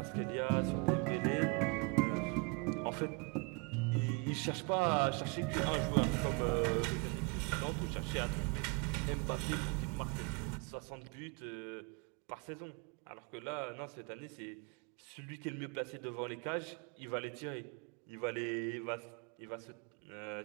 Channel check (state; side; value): quieter; left; 32.0 dB